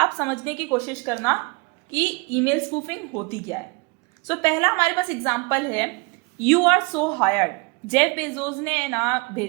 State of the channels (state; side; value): quieter; left; 29.7 dB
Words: समझने की कोशिश करना कि ईमेल स्पूफिंग होती क्या है। सो पहला हमारे पास एग्जांपल है, you are so hired. Jeff Bezos ने ना